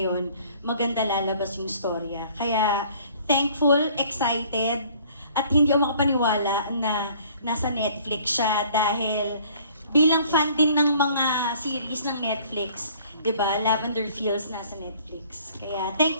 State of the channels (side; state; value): both; inverted; correlation -0.55